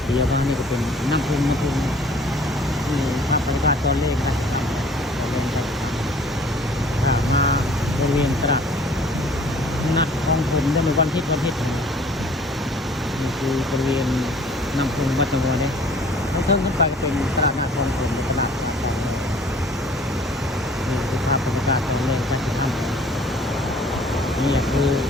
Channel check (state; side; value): normal; both; correlation 0.53